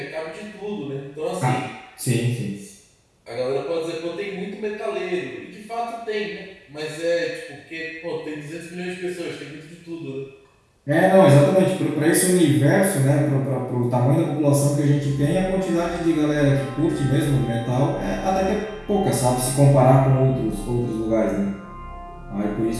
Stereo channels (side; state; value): both; identical; correlation 1.00